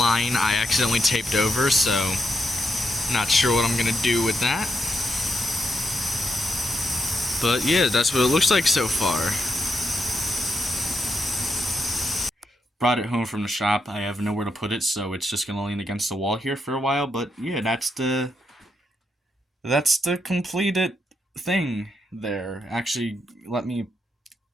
I accidentally taped over, so not sure what I'm gonna do with that. But yeah, that's what it looks like so far. Brought it home from the shop. I have nowhere to put it, so it's just gonna lean against the wall here for a while. But yeah, that's the completed thing there. Actually, let me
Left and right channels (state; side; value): normal; both; correlation 0.82